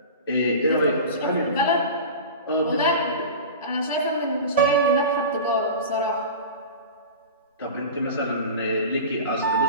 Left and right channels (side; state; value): both; inverted; correlation -0.31